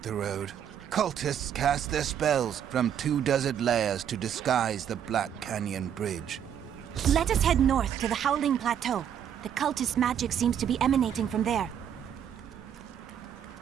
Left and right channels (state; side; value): quieter; left; 9.1 dB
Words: road. Cultists cast their spells from 2 desert layers to disguise the Black Canyon Bridge. Let us head north to the Howling Plateau. The cultist magic seems to be emanating from there.